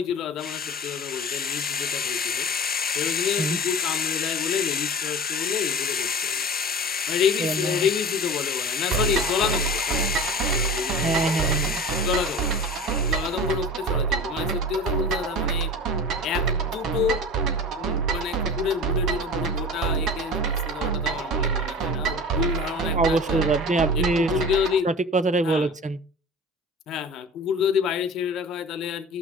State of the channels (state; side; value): normal; both; correlation 0.35